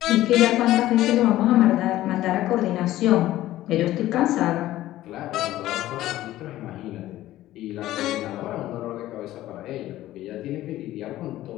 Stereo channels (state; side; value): quieter; right; 14.9 dB